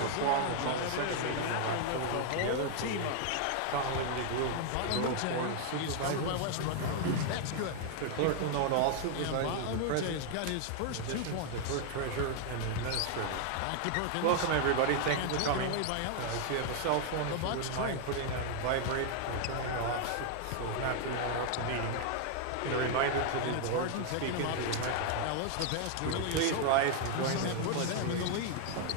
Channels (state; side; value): different; both; correlation 0.00